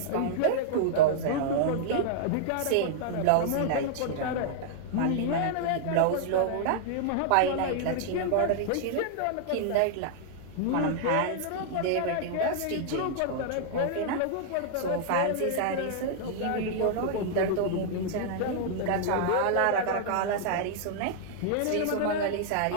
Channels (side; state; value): both; different; correlation -0.01